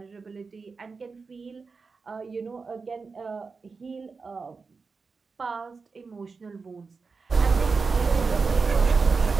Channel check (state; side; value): quieter; left; 4.6 dB